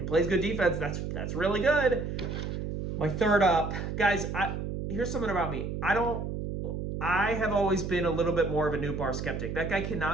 plays good defense, that's really good. My third up, guys. Here's something about me. I have always been a little bit more of a Nootbaar skeptic. That guy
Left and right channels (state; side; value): noise; right; hum, 4 dB below the sound